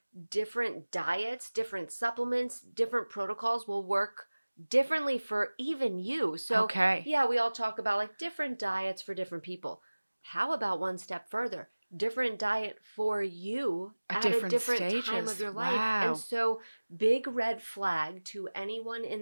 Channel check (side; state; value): both; inverted; correlation -1.00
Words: different diets, different supplements, different protocols will work differently for even you. So, Okay. yeah, we all talk about like different diets for different people. How about one step further? Different diet for you At at a different different time of stages. your life. And Wow. so, big red flag to anyone